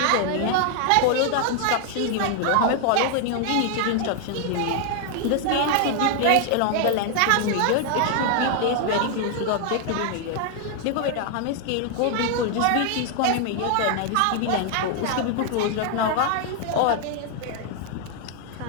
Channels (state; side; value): different; both; correlation 0.00